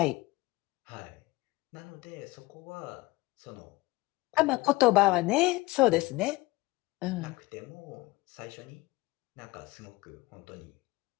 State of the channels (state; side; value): quieter; right; 20.9 dB